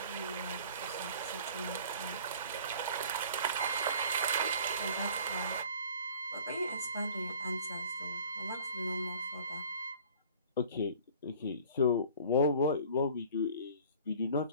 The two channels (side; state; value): both; inverted; correlation -0.49